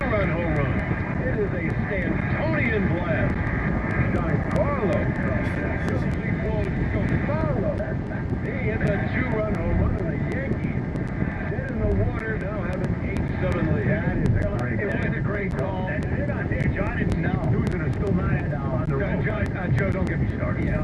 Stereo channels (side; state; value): both; identical; correlation 1.00